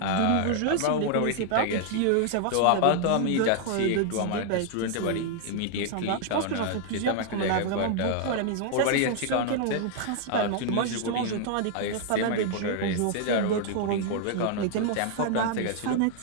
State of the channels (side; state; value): both; different; correlation 0.00